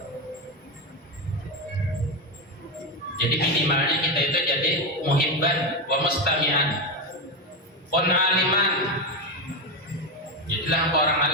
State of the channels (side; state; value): both; normal; correlation 0.12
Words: Jadi minimalnya kita itu jadi muhibban wa mustami'an, pun aliman. Jadilah orang